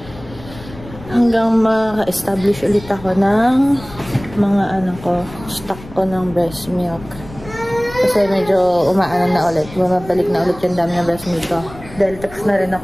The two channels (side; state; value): left; noise; rumble, 17 dB below the sound